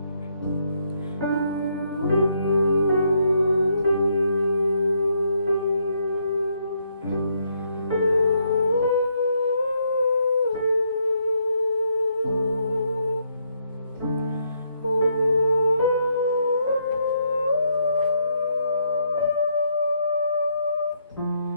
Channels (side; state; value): both; inverted; correlation -0.74